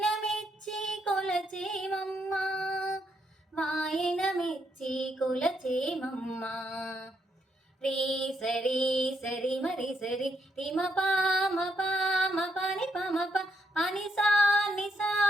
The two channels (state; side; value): normal; both; correlation 0.77